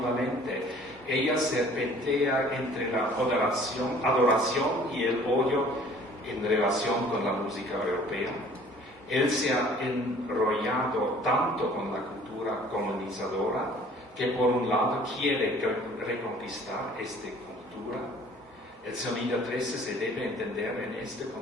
Ella serpentea entre la adoración y el odio en relación con la música europea. Él se ha enrollado tanto con la cultura colonizadora que por un lado quiere reconquistar esta cultura. El sonido 13 se debe entender en este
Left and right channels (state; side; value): normal; both; correlation 0.52